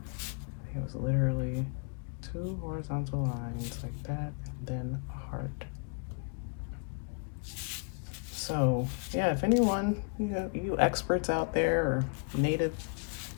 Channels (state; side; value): quieter; right; 37.5 dB